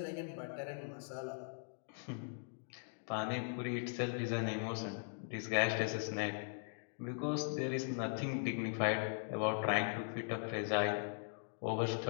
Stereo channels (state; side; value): silent; right; digital silence